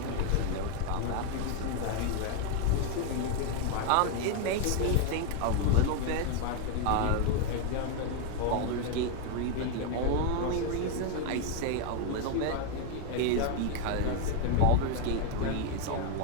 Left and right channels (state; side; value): different; both; correlation 0.01